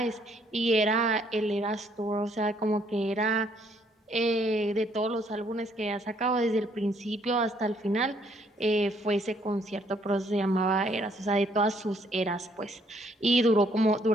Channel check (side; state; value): both; normal; correlation 0.67